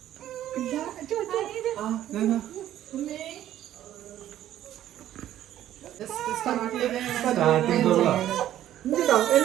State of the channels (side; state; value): left; quieter; 12.3 dB